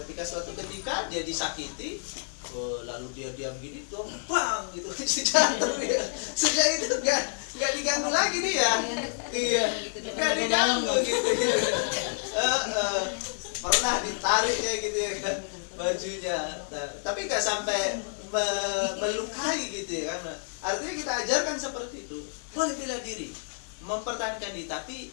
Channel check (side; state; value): right; silent; 56 dB below the other